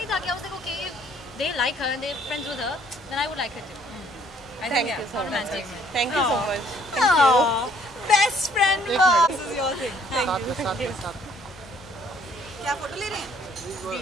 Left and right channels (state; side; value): normal; both; correlation 0.62